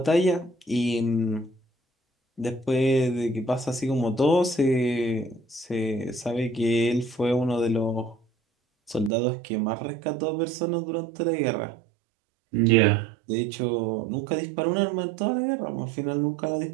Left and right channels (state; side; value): drops out; left; at 9.1 s